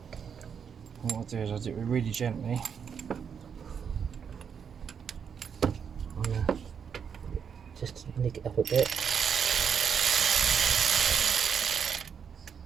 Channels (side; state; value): left; quieter; 7.1 dB